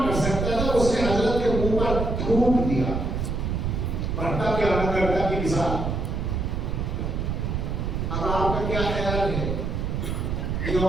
کر سکتا تھا، اس نے حضرت کے منہ پر تھوک دیا، بھٹا کے آنا کرتا کی مثال. اب آپ کا کیا خیال ہے کہ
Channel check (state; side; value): noise; right; rumble, 1 dB below the sound